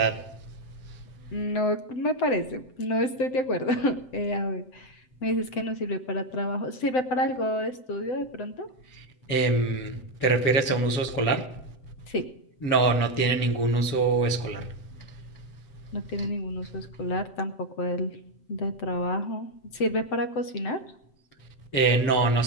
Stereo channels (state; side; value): late; right; 7.7 ms